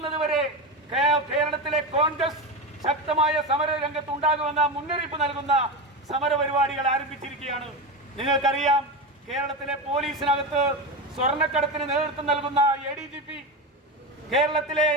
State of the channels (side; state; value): both; normal; correlation 0.19